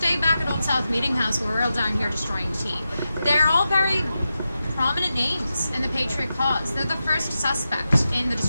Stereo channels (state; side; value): inverted; both; correlation -0.90